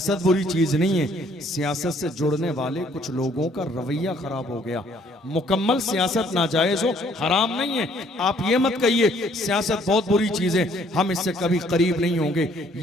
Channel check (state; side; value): normal; both; correlation 0.62